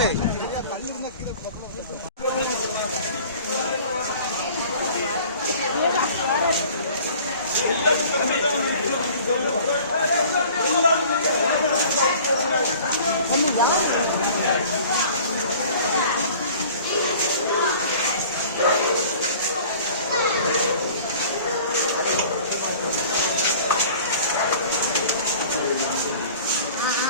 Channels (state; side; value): inverted; both; correlation -0.46